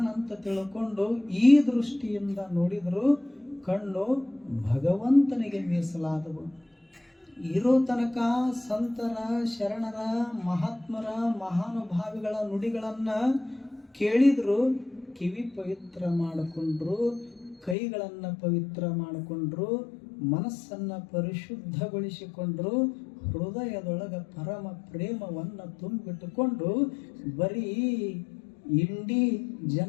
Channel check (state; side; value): drops out; right; at 17.8 s